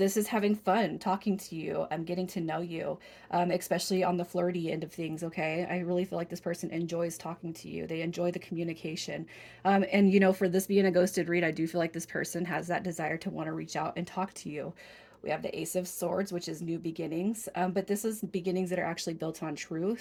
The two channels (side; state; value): both; identical; correlation 1.00